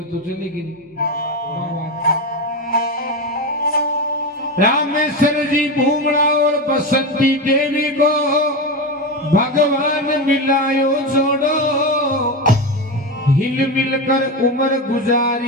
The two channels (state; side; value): normal; both; correlation 0.17